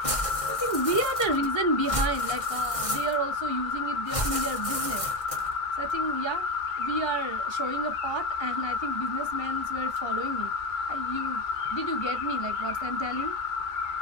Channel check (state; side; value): late; right; 1.6 ms